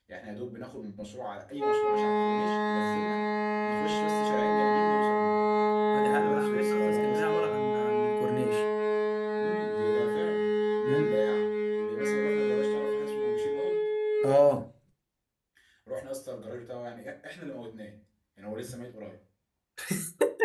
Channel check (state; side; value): identical; both; correlation 1.00